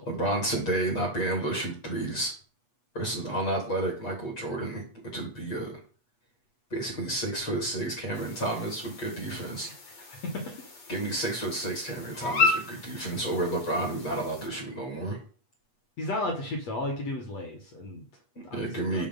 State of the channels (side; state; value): right; late; 8.3 ms